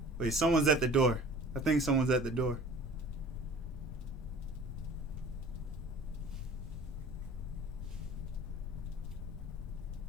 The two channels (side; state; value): both; normal; correlation 0.45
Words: wait, someone's at the door. I think someone's at the door.